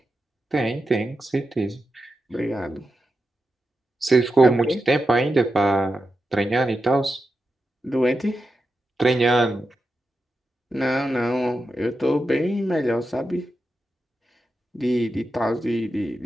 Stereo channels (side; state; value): both; normal; correlation 0.89